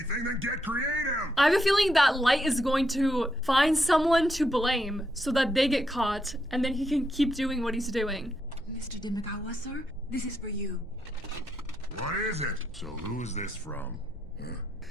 then get creative! I have a feeling that Light is going to find someone to blame so that they get caught and then he can keep doing what he's doing. Mr. Demagawa, sir, this is for you. What is it? So who is this from?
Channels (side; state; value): both; normal; correlation 0.80